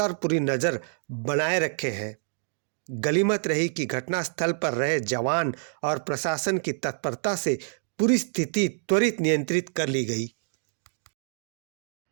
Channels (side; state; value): left; silent; digital silence